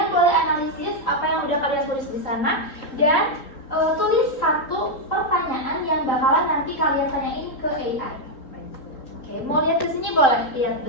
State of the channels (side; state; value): right; late; 3.8 ms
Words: boleh analisis apa yang udah kalian tulis di sana dan tulis satu pertanyaan yang bakalan nanti kalian tanyain ke AI. Oke, mau lihat ke sini boleh lihat